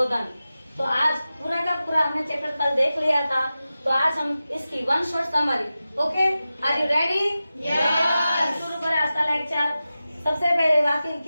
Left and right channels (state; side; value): inverted; both; correlation -0.94